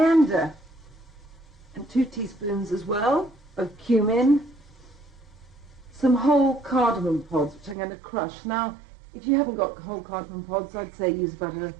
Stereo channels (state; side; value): drops out; left; at 7.8 s